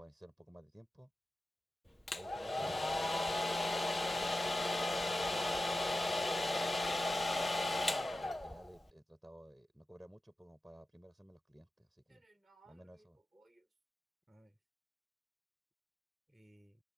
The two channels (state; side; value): normal; both; correlation 0.93